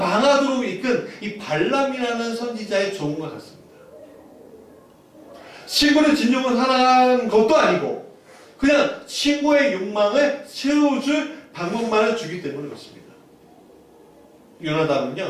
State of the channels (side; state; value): both; identical; correlation 1.00